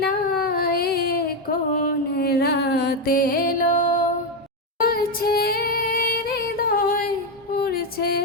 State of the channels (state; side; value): normal; both; correlation 0.06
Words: না এ কোন রাতে এলো উড়ছে হৃদয় উড়ছে